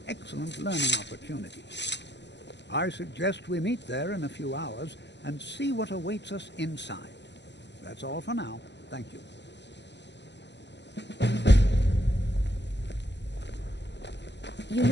excellent learning opportunity. I suggest we meet there in a few hours and see what awaits us inside. That's all for now. Thank you. You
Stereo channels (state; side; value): late; right; 0.51 ms